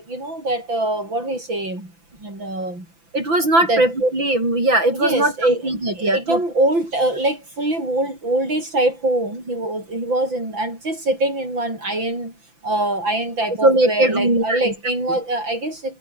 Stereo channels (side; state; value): left; late; 5.9 ms